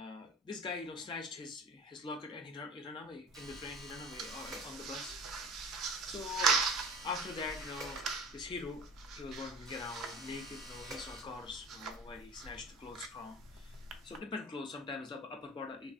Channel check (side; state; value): both; normal; correlation 0.39